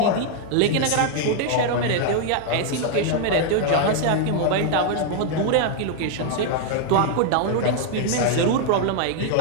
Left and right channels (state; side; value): different; both; correlation 0.00